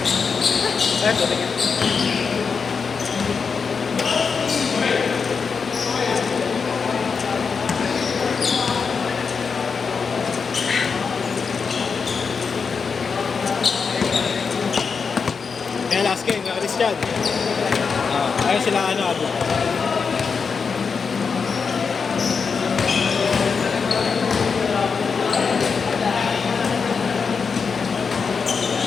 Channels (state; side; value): quieter; right; 5.5 dB